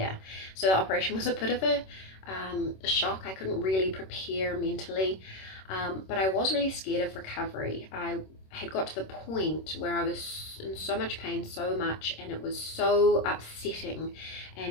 So the operation was a bit of a shock. I couldn't really prepare mentally. But I was really scared of recovery. I had got to the point where I was in so much pain, so much, and it was so upsetting,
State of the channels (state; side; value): late; right; 26 ms